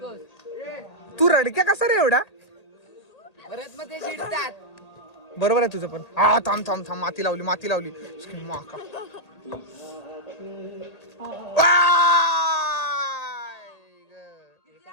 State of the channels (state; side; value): late; right; 1.8 ms